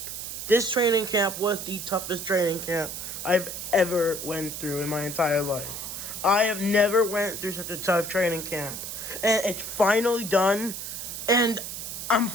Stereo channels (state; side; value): noise; right; hiss, 7 dB below the sound